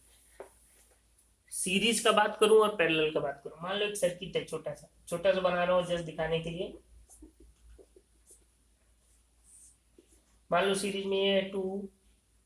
सीरीज का बात करूं और पैरेलल का बात करूं, मान लो एक सर्किट है छोटा सा, छोटा सा बना रहा हूँ जस्ट दिखाने के लिए। मान लो सीरीज में ये 2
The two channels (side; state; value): both; identical; correlation 1.00